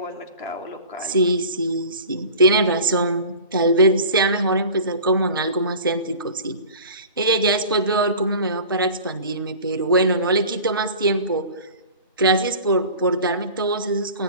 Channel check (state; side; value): inverted; both; correlation -0.40